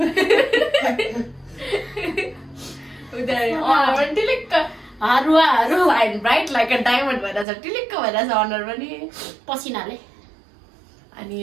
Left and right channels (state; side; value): drops out; left; at 7.5 s